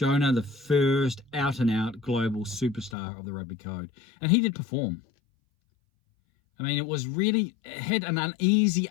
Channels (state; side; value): drops out; right; at 3.0 s